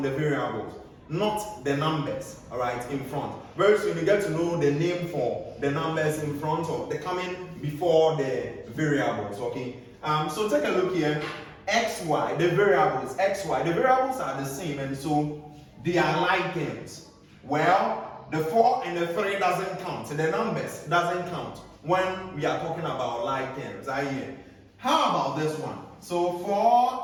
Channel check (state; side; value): identical; both; correlation 1.00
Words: the variables, not the numbers, all right, in front. Very soon you get to know the name for the numbers in front of the coming before the variables, okay? So take a look here. xy, the variables, xy, the variables are the same, and so they are like terms. Well, the 4 and the 3 doesn't count. So the numbers doesn't count when we are talking about like terms. How about this one? So